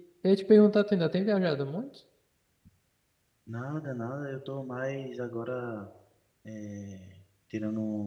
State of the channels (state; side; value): identical; both; correlation 1.00